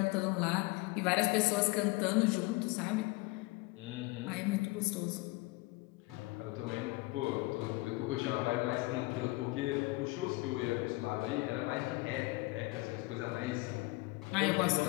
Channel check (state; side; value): quieter; right; 22.7 dB